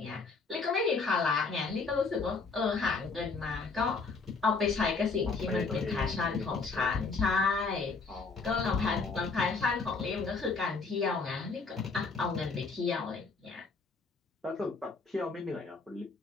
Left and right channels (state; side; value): quieter; right; 4.3 dB